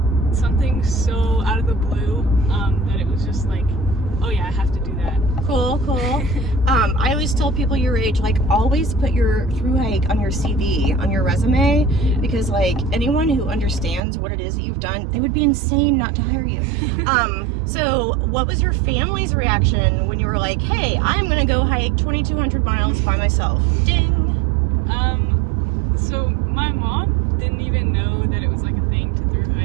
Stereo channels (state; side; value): drops out; left; at 14.0 s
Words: something so out of the blue that it was just like, oh yeah, I have to do that. Cool. I always tell people your age, like, always put your through hike on your CV, on your resume, because like anyone who understands what it is that you've done, they would be insane not to hire you. So what was your family's reaction when you were like, hey, I'm gonna go hike 2,200 miles by myself? Ding. So my mom didn't even know that it was like a thing to through